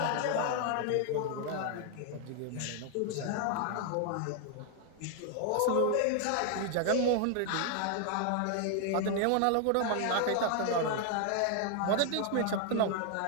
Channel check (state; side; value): different; both; correlation 0.00